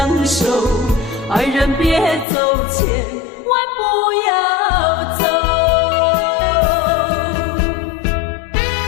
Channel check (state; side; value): drops out; right; at 2.2 s